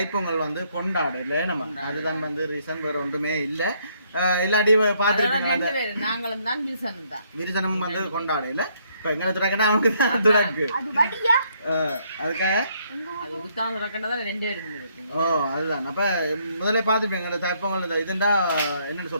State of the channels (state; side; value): inverted; both; correlation -0.69